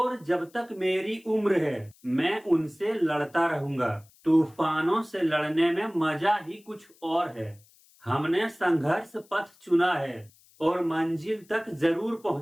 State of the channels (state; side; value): noise; left; hiss, 29 dB below the sound